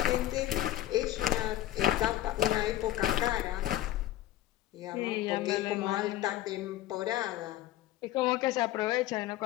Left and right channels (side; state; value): right; quieter; 14.1 dB